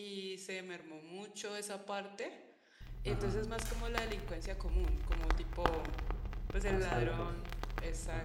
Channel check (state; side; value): identical; both; correlation 1.00